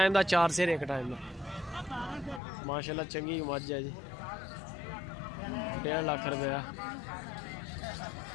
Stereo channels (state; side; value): drops out; right; at 2.4 s